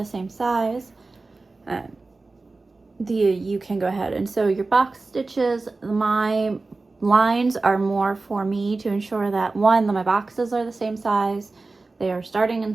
same size, you can go ahead and sew your box stitches. My lines are more for me to ensure that one, that my boxes are the same size, they are starting and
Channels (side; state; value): left; quieter; 3.6 dB